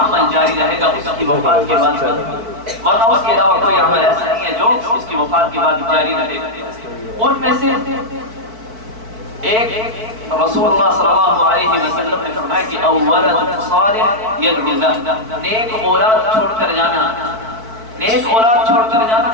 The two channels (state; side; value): late; left; 4.5 ms